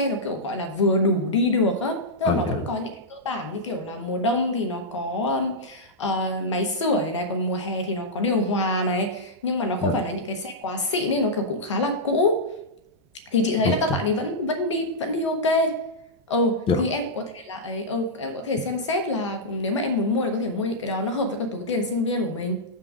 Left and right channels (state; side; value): normal; both; correlation -0.09